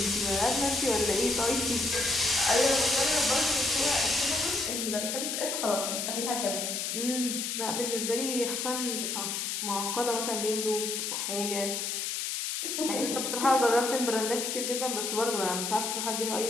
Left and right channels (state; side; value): noise; left; hiss, 2 dB below the sound